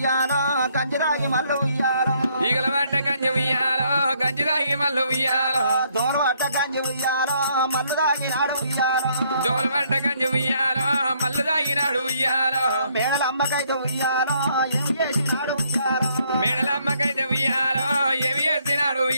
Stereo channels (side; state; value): both; inverted; correlation -0.69